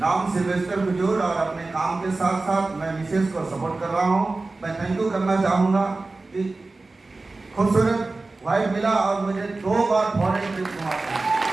नाम सिल्वेस्टर कुजूर और अपने काम के साथ साथ मैं मिसेस को सपोर्ट कर रहा हूँ। मैं थैंक यू करना चाहूँगा कि खूबसूरत वाइफ मिला और मुझे 2 बार फॉरेन ट्रिप घुमा।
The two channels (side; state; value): left; quieter; 3.4 dB